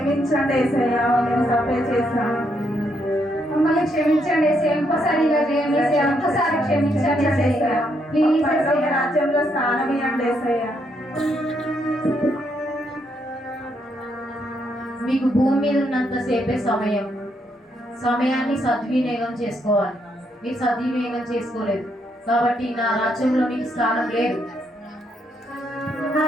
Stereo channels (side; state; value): both; normal; correlation 0.76